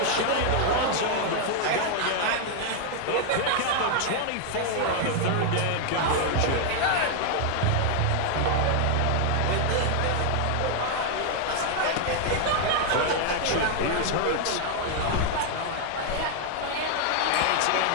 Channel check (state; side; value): different; both; correlation 0.00